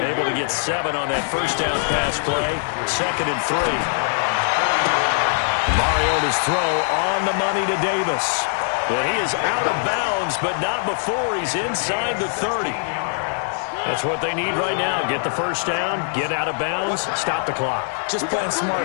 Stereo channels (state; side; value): silent; right; digital silence